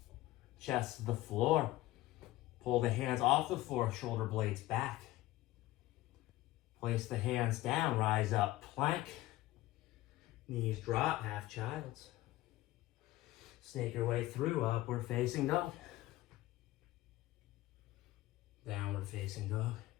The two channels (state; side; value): quieter; right; 16.8 dB